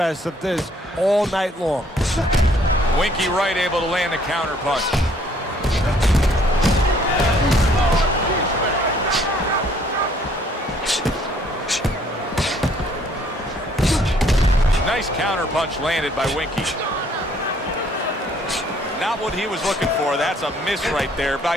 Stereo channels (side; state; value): both; normal; correlation 0.62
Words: of this all night long. Winky Wright able to land a counter punch. Nice counter punch landed by Winky. Not what he was looking for. That's a miss right there by